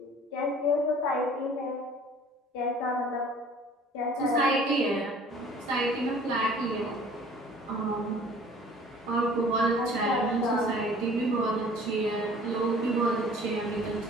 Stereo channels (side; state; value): both; normal; correlation 0.50